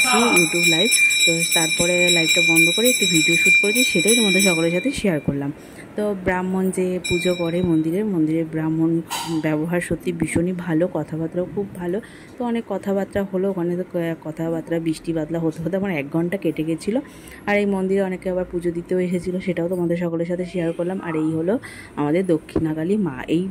ইউটিউব লাইভ। তো তারপরে লাইভটা বন্ধ করে একটু ভিডিও শ্যুট করেছি, সেটাই তোমাদের সকলের সাথে শেয়ার করলাম। তো ব্রাহ্মণ যে পুজো করে মন্দিরে ব্রাহ্মণ ব্যবহার সত্যি ভীষণই ভালো, কথাবার্তাও খুব ভালো। তো অনেক কথাবার্তা হলো ওখানে। তো কথাবার্তা বৃষ্টি বাদলা হতে হতে আমার 1 ঘন্টা কেটে গেছিলো। আর এই মন্দিরে অনেকে আবার পুজো দিতেও এসেছিলো, সেটাও তোমাদের সকলের সাথে শেয়ার করলাম। আর এই হলো আমাদের দক্ষিণাকালী মা। এই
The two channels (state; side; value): identical; both; correlation 1.00